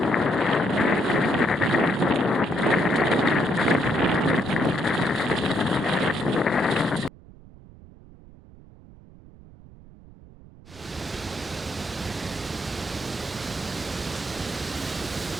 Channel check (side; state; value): right; noise; rumble, 21 dB below the sound